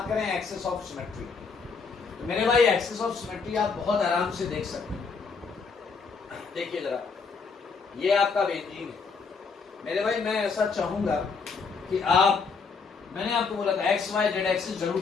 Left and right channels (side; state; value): right; quieter; 5.0 dB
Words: करें एक्सिस ऑफ सिमेट्री, तो मेरे भाई एक्सिस ऑफ सिमेट्री आप बहुत आराम से देख सकते हैं। देखिए जरा, ये आपका बेंजीन है मेरे भाई। मैं ऐसा चाहूंगा कि आप, मैंने आपको बोला था एक्स वाई जेड एक्सिस